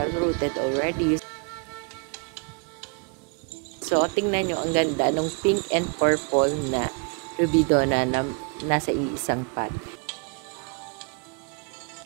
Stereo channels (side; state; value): left; quieter; 36.2 dB